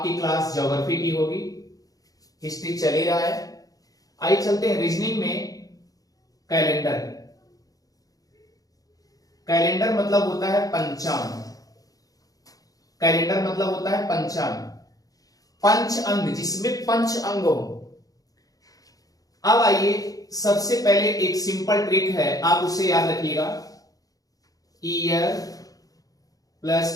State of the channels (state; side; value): late; right; 0.17 ms